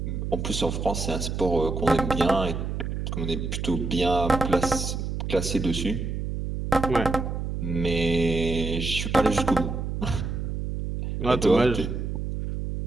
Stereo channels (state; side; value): noise; right; hum, 3 dB below the sound